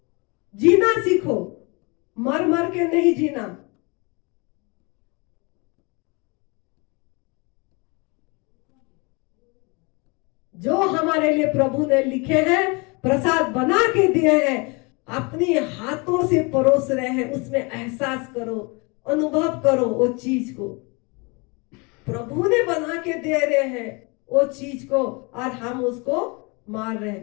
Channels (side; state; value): right; quieter; 29.3 dB